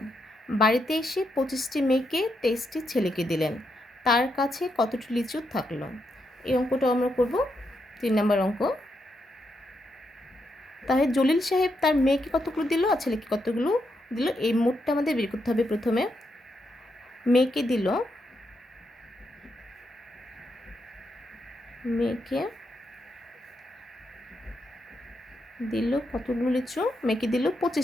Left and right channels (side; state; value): both; normal; correlation 0.81